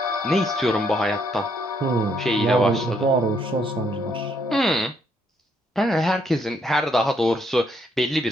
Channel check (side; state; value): both; normal; correlation 0.72